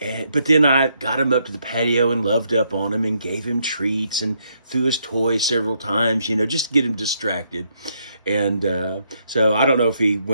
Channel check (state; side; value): inverted; both; correlation -0.75